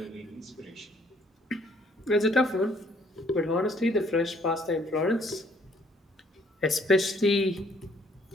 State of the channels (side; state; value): both; normal; correlation 0.64